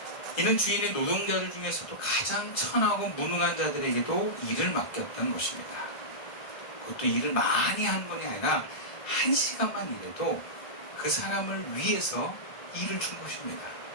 이는 주인의 노동자들 중에서도 가장 천하고 무능한 자들에게도 일을 맡겼던 것입니다. 그것도 일을 많이 하는 것이 아니라 1시간만 일해도 그 사람을 위해서 일을 준 것입니다.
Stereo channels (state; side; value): late; right; 1.7 ms